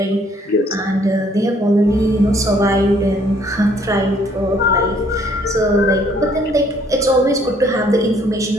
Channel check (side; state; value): both; normal; correlation 0.63